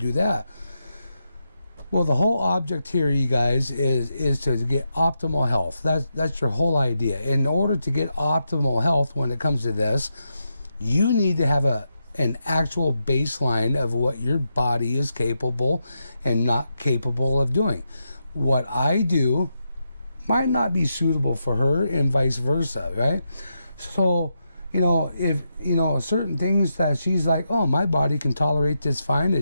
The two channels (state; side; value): inverted; both; correlation -0.85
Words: that. Well, the whole object here, you guys, is to get optimal health. That's your whole idea. In order to get optimal health when it comes to this, you need to have an actual baseline of what your body is capable and not capable of doing. What I do might not be suitable for her and vice versa, right? So, if, certain things that she's like, oh, my body can tolerate this fine,